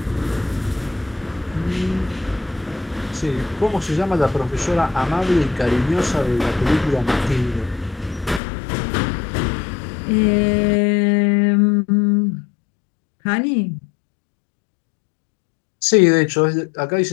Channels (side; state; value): right; drops out; at 8.4 s